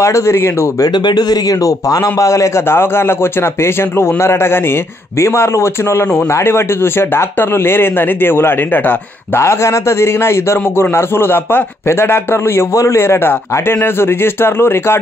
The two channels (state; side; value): normal; both; correlation 0.73